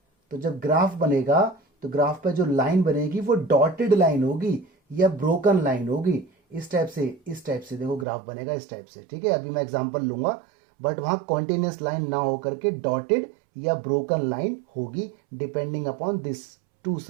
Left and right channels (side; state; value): left; drops out; at 8.1 s